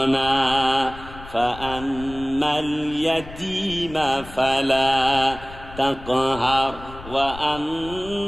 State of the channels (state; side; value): noise; left; rumble, 16 dB below the sound